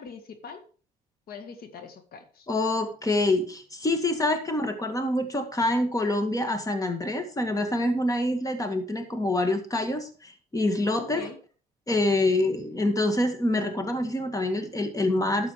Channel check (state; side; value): normal; both; correlation 0.70